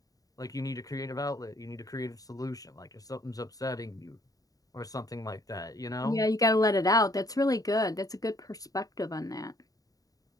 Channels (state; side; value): late; right; 0.18 ms